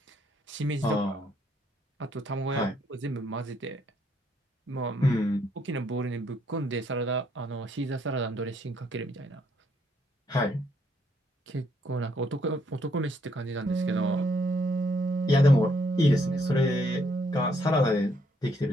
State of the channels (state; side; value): normal; both; correlation 0.71